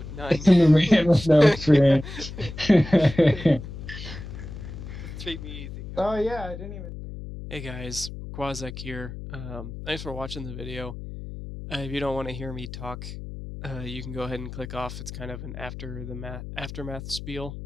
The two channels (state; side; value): noise; left; hum, 10 dB below the sound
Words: none. The man with no experience. Treat me easy. Oh yeah, I didn't even. Hey guys, Rayquaczech here. Thanks for watching the video. If you don't want to hear me talk, you can go ahead and click off. It's kind of an aftermath spiel.